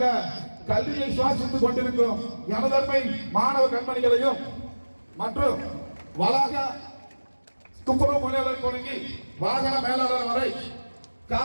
கல்வியை சுவாசித்துக் கொண்டிருக்கும் எனதன்மை மாணவ கண்மணிகளையும், மற்றும் வளாக துப்புரவு பணியாளர் தொடங்கி வாகன மேலாளர் வரை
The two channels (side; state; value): both; inverted; correlation -1.00